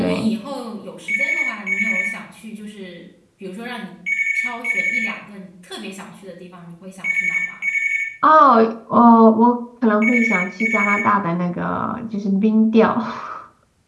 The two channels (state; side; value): identical; both; correlation 1.00